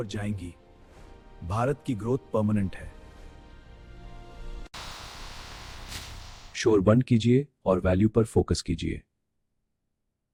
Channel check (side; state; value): both; identical; correlation 1.00